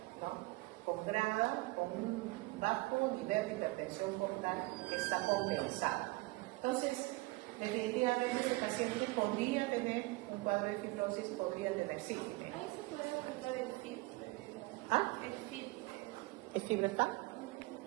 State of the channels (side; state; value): left; quieter; 22.7 dB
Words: ¿no? Con grada, con un bajo nivel de hipertensión portal que está compensado. Entonces, definitivamente el paciente podría tener un cuadro de fibrosis, podría tener sífilis. ¿Ahí se puede aplicar el FIB? ¿Ah? ¿El FIB? ¿El FIB-4?